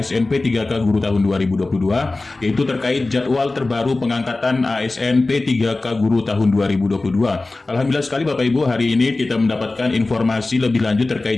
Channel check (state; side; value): quieter; right; 3.2 dB